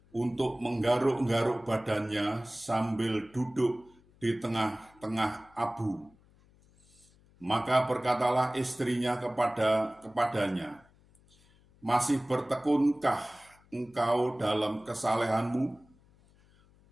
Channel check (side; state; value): left; noise; hum, 30 dB below the sound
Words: untuk menggaruk-garuk badannya sambil duduk di tengah-tengah abu. Maka berkatalah istrinya kepadanya, "Masih bertekunkah engkau dalam kesalehanmu?